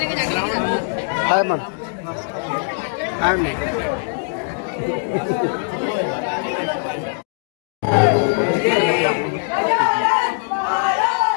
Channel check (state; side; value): silent; right; digital silence